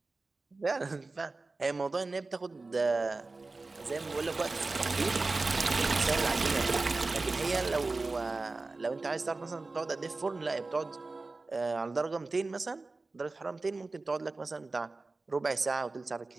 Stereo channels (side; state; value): left; quieter; 3.5 dB